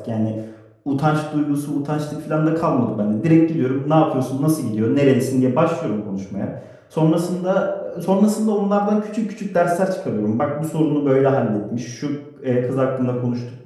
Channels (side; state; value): both; identical; correlation 1.00